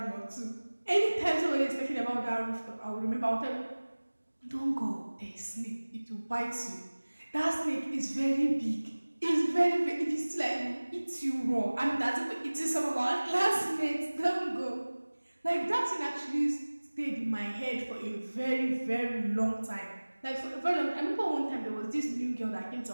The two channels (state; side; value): inverted; both; correlation -1.00